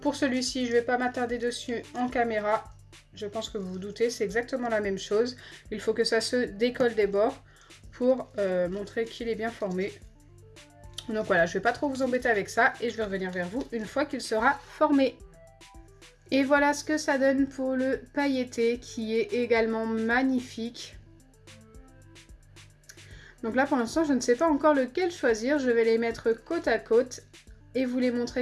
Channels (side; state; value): both; identical; correlation 1.00